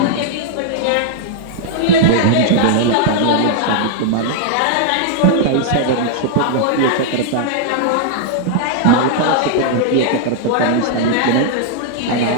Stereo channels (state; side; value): different; both; correlation -0.01